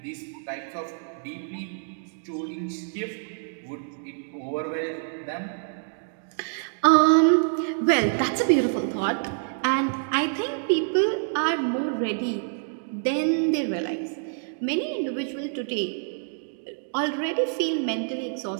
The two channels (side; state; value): left; silent; digital silence